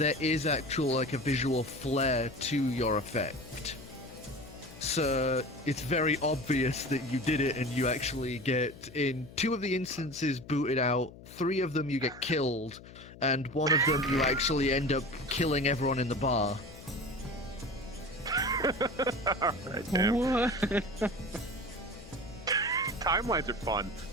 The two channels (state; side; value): noise; left; hum, 18 dB below the sound